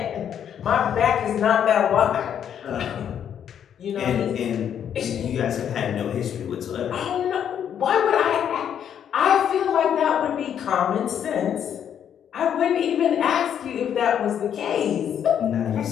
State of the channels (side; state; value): right; quieter; 9.0 dB